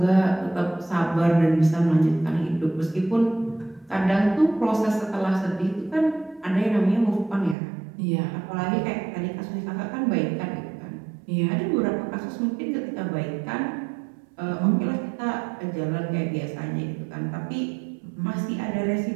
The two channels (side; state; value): left; drops out; at 7.6 s